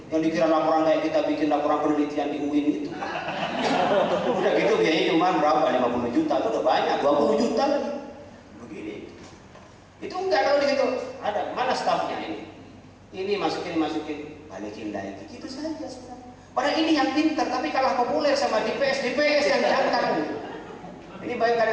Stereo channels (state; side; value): identical; both; correlation 1.00